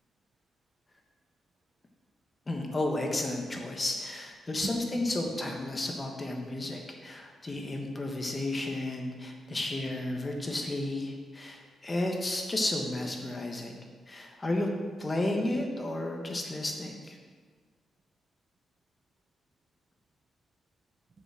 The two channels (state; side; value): normal; both; correlation 0.90